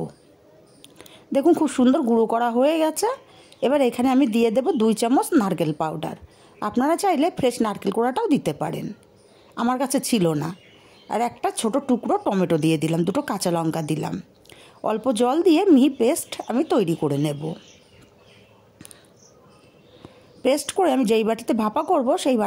দেখুন খুব সুন্দর গুঁড়ো করা হয়ে গেছে। এবার এখানে আমি দিয়ে দেব 2 চামচ নারকেল পাউডার। আপনারা চাইলে ফ্রেশ নারকেল কোড়াটাও দিতে পারেন, আমার কাছে ছিল না। আর একটা ছোট টুকরো টমেটো দিয়ে দিলাম, 2টো কাঁচা লঙ্কা দিলাম। অল্প জল দিয়ে মিহি পেস্ট আমি তৈরি করে নেব। পেস্ট করে আমি যেই বাটিতে ভাপা করব সেই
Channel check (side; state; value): both; identical; correlation 1.00